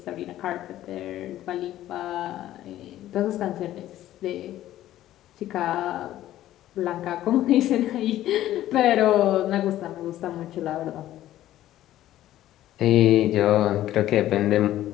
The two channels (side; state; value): right; quieter; 13.6 dB